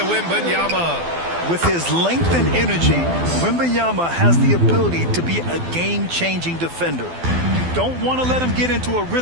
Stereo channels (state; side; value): late; left; 12 ms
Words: Wembanyama. With his length and energy, Wembanyama has the ability to be a game-changing defender. You don't want to let him get into a